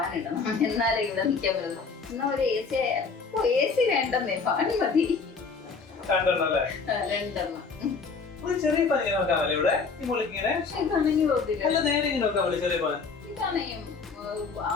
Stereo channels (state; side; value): quieter; right; 4.8 dB